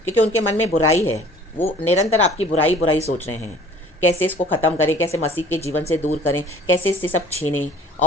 क्योंकि उनके मन में बुराई है, वो निरंतर आपकी बुराई बुराई सोच रहे हैं। कैसे इसको ख़त्म करें, कैसे मसीह के जीवन से दूर करें, कैसे इससे सब छीनें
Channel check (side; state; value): both; normal; correlation 0.50